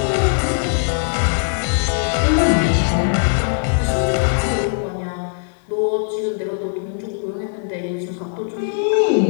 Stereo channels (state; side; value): silent; right; 66 dB below the other